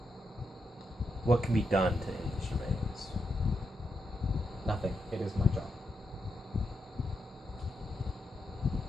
What can be done to end the surveillance? Nothing. It is my job.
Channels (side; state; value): both; normal; correlation 0.83